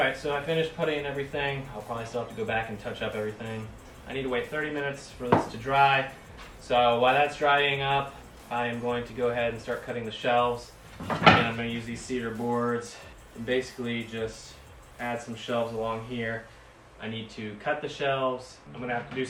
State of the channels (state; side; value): identical; both; correlation 1.00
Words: so I finished putting everything. I'll probably still have to go back and touch up everything. I need to wait 30 minutes for this to dry. So while that's drying up, I am going to go ahead and start cutting the shelves. And I'm going to use these cedar boards and basically just add some shelves along here. I need to cut the shelves. I'm going to have to do